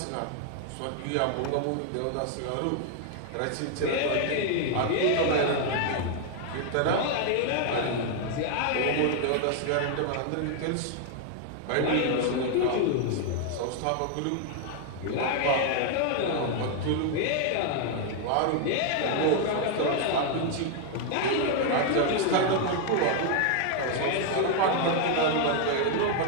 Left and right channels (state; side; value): different; both; correlation 0.00